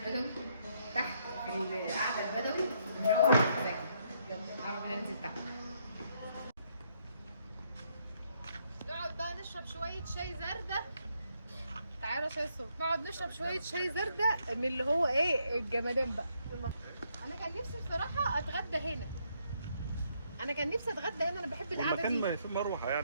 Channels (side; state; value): both; inverted; correlation -0.73